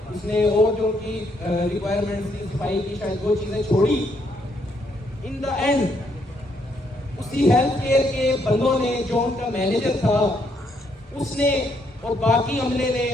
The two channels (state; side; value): normal; both; correlation 0.73